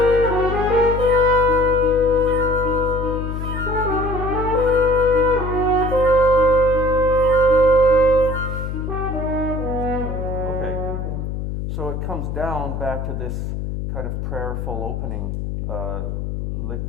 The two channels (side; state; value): left; noise; hum, 4 dB below the sound